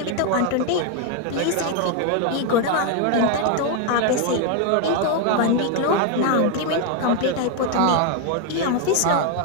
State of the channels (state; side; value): different; both; correlation 0.01